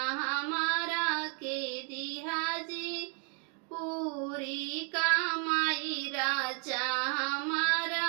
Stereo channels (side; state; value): left; quieter; 38.2 dB